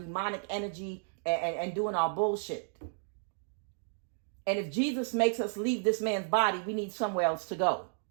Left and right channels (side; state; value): left; silent; digital silence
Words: energy and doing our bullshit. And if Jesus makes us leave this man's body, we need somewhere else to go.